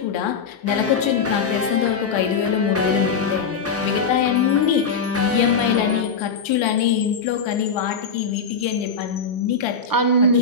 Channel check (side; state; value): right; quieter; 5.3 dB